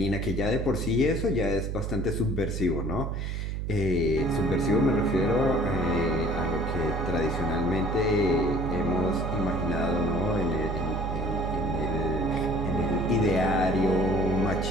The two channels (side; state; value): right; noise; hum, 3 dB below the sound